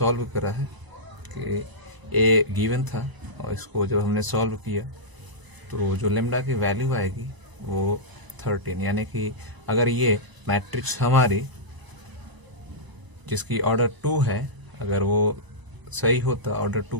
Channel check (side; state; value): left; late; 1.0 ms